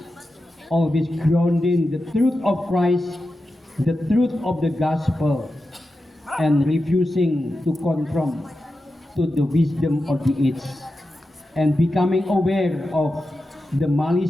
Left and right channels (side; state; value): both; normal; correlation 0.91